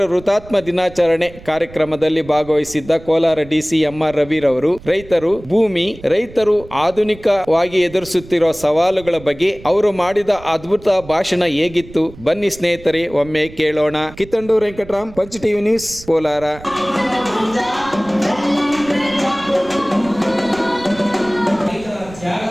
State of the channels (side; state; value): right; noise; rumble, 19 dB below the sound